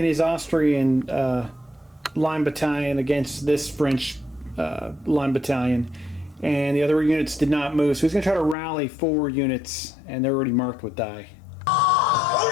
his Austrian line battalion against this French line battalion, and the other units did not move, so he's going to try to rally 4 units, and they're already marked with die.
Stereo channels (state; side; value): drops out; right; at 8.6 s